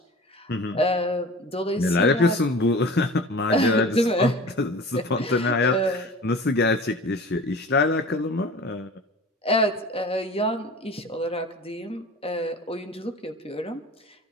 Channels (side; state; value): both; normal; correlation 0.39